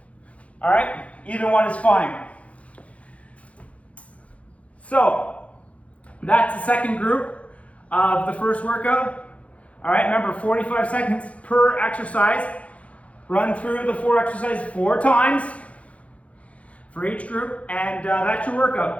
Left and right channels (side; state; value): right; late; 0.064 ms